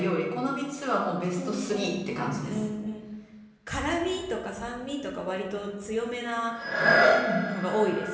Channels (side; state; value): both; identical; correlation 1.00